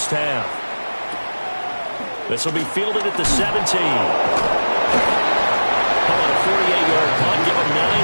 half. This will be fielded at the 17. Calling a 48-yard punt. Give him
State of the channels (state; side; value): inverted; both; correlation -1.00